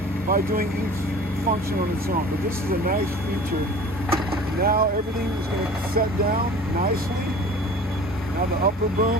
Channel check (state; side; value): normal; both; correlation 0.42